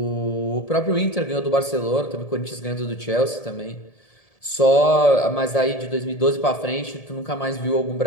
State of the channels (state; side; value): late; right; 1.7 ms